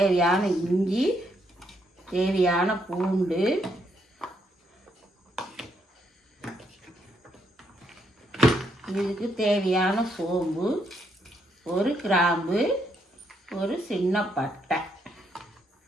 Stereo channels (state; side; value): normal; both; correlation 0.75